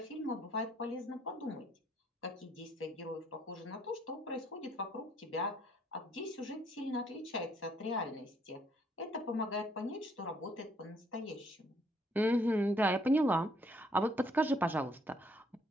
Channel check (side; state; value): both; normal; correlation 0.67